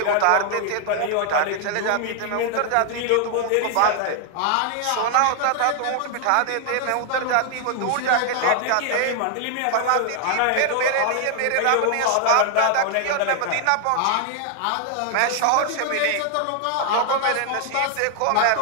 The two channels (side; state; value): both; different; correlation 0.00